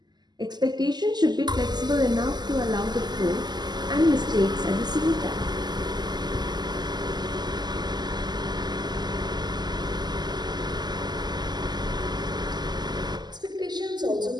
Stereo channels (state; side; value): late; left; 0.21 ms